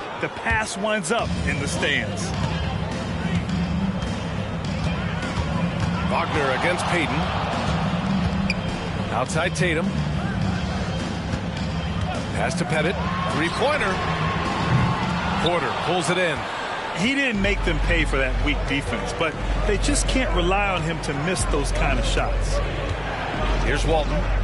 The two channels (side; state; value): both; identical; correlation 1.00